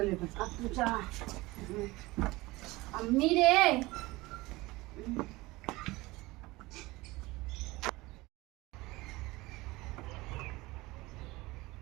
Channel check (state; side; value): quieter; left; 21.0 dB